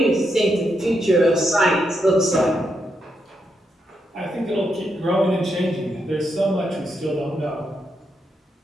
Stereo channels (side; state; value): both; normal; correlation 0.81